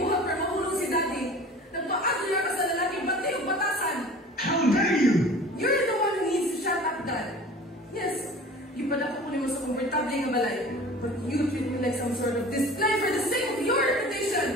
para mahulog si Daddy. Nagpa-agler ka sa lalaking bantay o batasan. How dare you? You're the one who needs to shut up, Dad. Yes, you pala ko mo sa komportable nga balay. But you treat me like some sort of display for the sake of your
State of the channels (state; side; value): normal; both; correlation 0.42